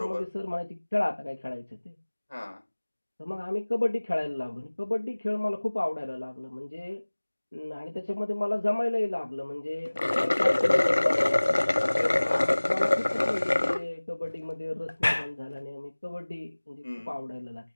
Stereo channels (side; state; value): both; inverted; correlation -1.00